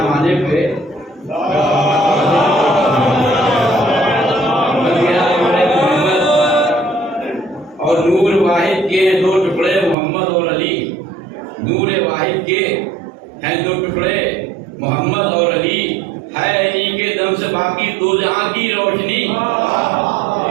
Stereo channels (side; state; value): left; drops out; at 10.0 s